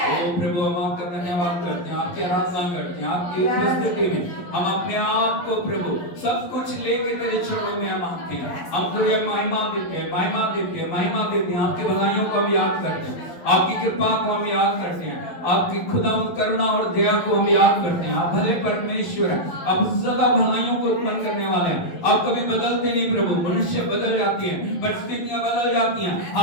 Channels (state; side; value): late; right; 11 ms